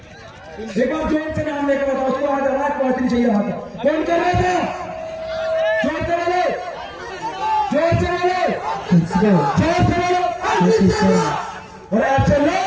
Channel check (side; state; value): both; identical; correlation 1.00